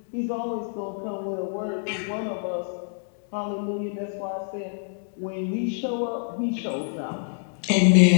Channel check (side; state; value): right; silent; digital silence